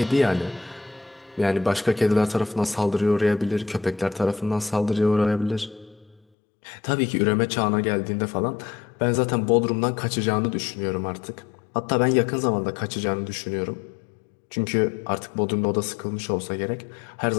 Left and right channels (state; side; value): drops out; right; at 6.2 s